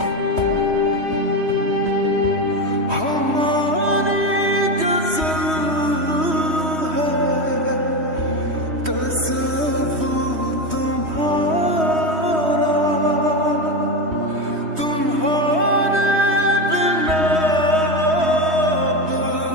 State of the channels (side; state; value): left; late; 3.2 ms